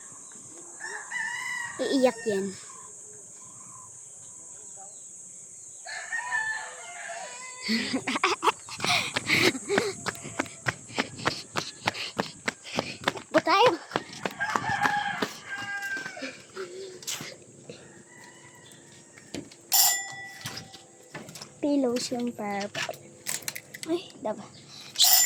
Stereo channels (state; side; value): identical; both; correlation 1.00